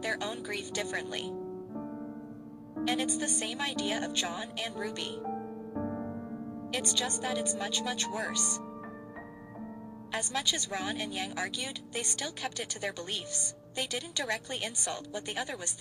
their own grief differently. And it's the same idea of John and Ruby. It's just that it's much, much worse. As much as Ron and Yang argued, they still kept it to their beliefs. They didn't directly insult what the other was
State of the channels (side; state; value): both; identical; correlation 1.00